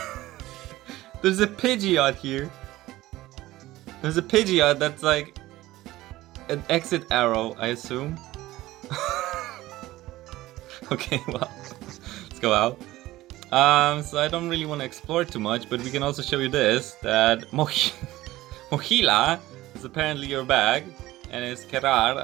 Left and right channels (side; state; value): left; quieter; 16.9 dB